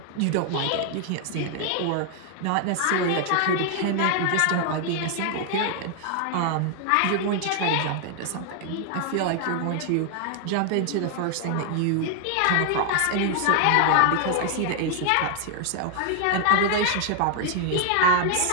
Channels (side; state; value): both; different; correlation 0.00